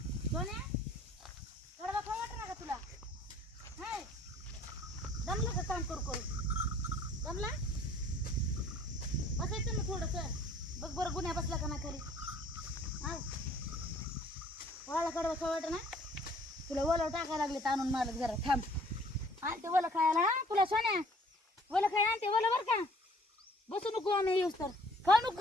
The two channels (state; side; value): normal; both; correlation 0.56